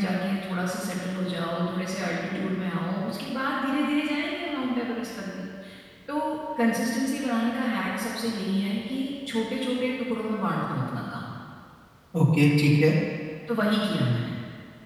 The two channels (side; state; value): both; identical; correlation 1.00